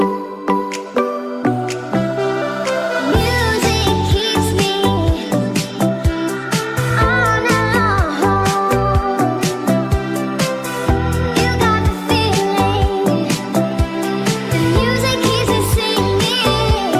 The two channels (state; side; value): identical; both; correlation 1.00